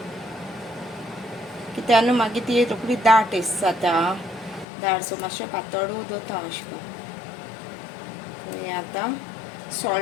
कित्याक न्हू मागीर ती रोखडी दाट एस जाता. दाट सो मातशें पातळ दवरता अशें करून. हें आतां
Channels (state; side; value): drops out; right; at 4.7 s